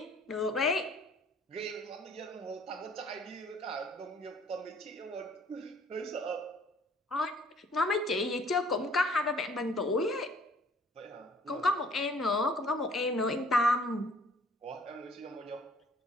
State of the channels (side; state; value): both; normal; correlation 0.57